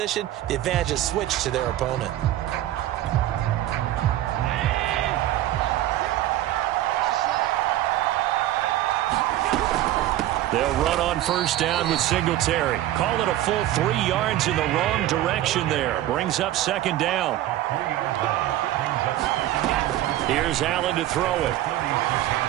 the advantage is switched to their opponent. They'll run on 1st down with Singletary. Call it a full 3 yards in the wrong direction there. Brings up 2nd down. Here's Allen to throw it.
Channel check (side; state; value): left; quieter; 14.0 dB